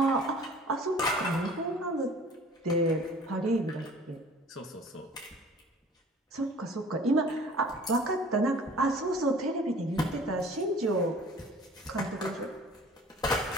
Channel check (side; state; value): both; normal; correlation 0.48